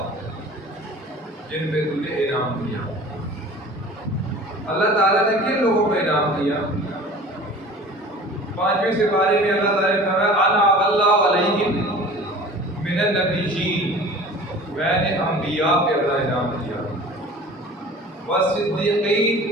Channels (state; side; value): normal; both; correlation 0.42